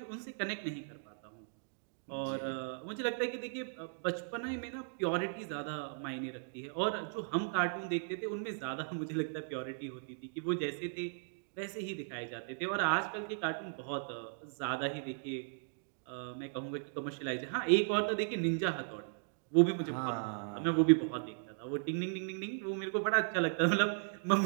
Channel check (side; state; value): left; silent; digital silence